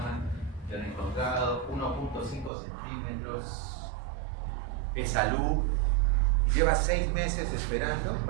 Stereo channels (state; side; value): drops out; left; at 2.5 s